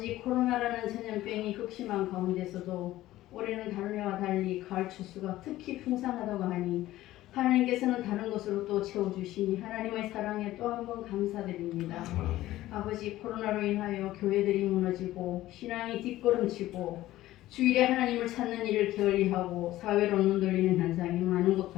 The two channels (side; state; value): right; quieter; 15.5 dB